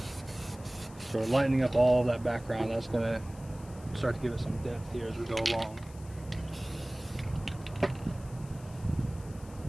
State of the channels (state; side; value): noise; left; hiss, 22 dB below the sound